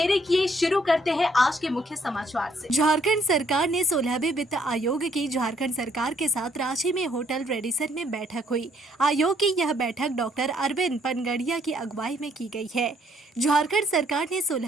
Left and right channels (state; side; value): normal; both; correlation 0.67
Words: किए शुरू करते हैं आज के मुख्य समाचार से। झारखंड सरकार ने 16वें वित्त आयोग की झारखंड सरकार के साथ रांची में होटल रेडिसन में बैठक हुई। आयोग की यह बैठक डॉक्टर अरविंद पनगड़िया की अगुवाई में की गई है। झारखंड सरकार ने